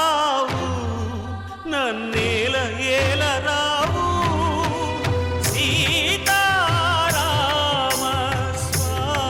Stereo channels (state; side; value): identical; both; correlation 1.00